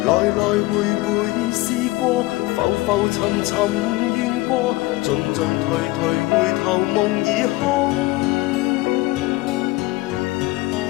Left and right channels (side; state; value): right; quieter; 20.5 dB